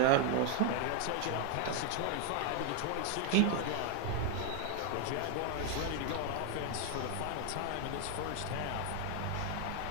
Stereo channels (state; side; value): different; both; correlation 0.00